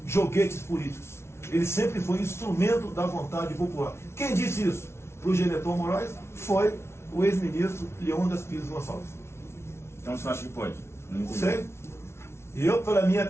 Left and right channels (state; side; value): late; right; 0.13 ms